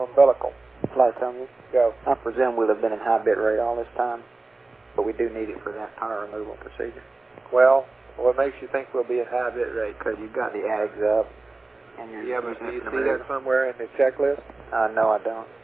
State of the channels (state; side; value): quieter; left; 3.3 dB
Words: Flight, tell me. Go. I presume we'll have been in high bit rate all this time, but we do need it for that power removal procedure. Well, what makes you think we'll be in high bit rate? Because you've got the AGs up, and you're yeah, but do you see that somewhere in the checklist? No, I don't.